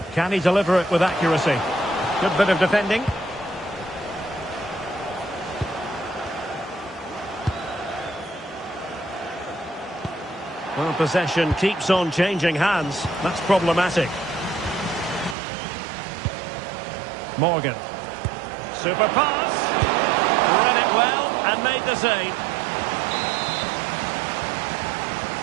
Can he deliver it with accuracy? Good bit of defending. Well, possession keeps on changing hands. That's problematic. Morgan. Super pass. Read it well and made the save.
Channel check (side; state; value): left; drops out; at 15.4 s